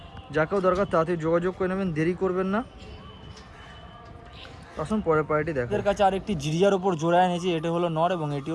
যাকেও দরকার তাড়াতাড়ি যোগাযোগ করে নেবেন, দেরি করবেন না। আসুন পরের পায়রাটি দেখেন। এর কাছে আরেকটি জিরিয়ার ওপর জোড়া এনেছি। এটি হলো নর এবং এটি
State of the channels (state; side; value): identical; both; correlation 1.00